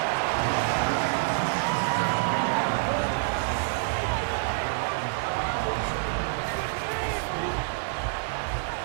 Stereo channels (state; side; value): silent; left; digital silence